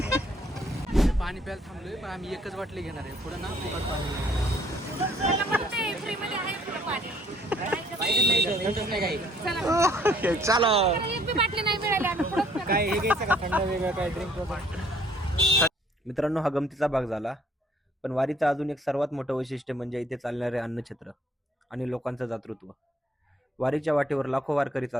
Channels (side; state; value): both; normal; correlation 0.62